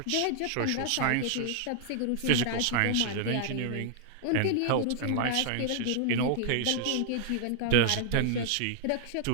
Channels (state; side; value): different; both; correlation 0.00